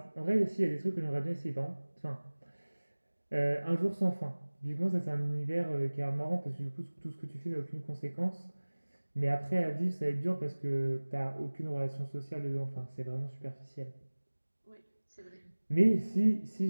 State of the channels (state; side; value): inverted; both; correlation -1.00